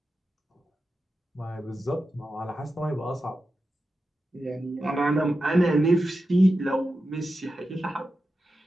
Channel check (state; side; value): normal; both; correlation 0.91